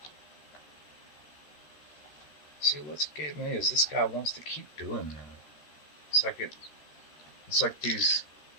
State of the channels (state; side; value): late; right; 13 ms